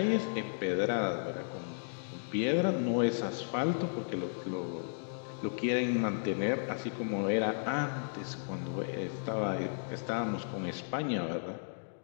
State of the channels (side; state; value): right; silent; digital silence